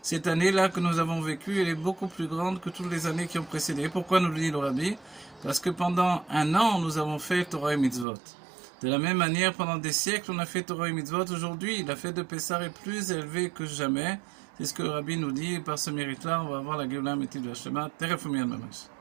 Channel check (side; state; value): left; drops out; at 8.1 s